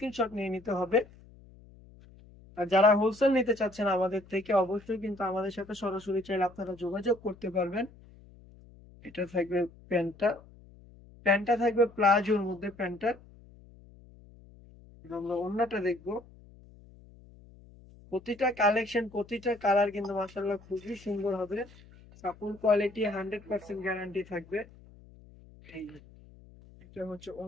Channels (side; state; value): left; noise; hum, 23 dB below the sound